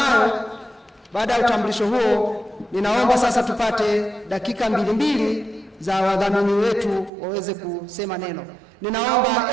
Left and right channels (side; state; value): left; drops out; at 7.1 s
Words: baada ya utambulisho huo, ninaomba sasa tupate dakika mbili za wadhamini wetu waweze kusema neno. Ninaomba